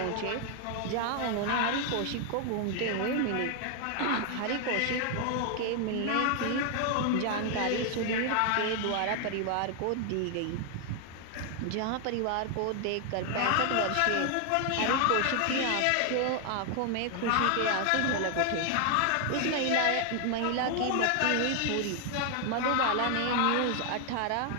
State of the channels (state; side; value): different; both; correlation 0.00